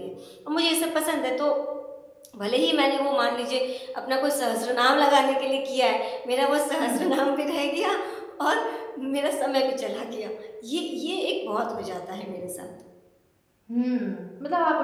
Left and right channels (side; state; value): both; identical; correlation 1.00